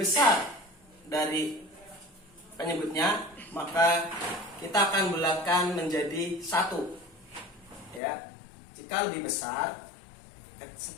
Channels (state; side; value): drops out; right; at 8.0 s